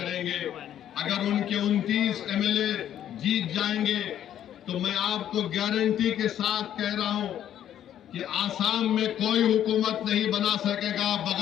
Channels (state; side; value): quieter; right; 10.7 dB